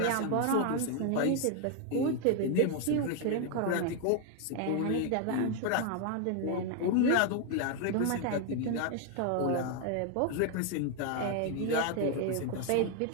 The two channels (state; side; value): different; both; correlation 0.01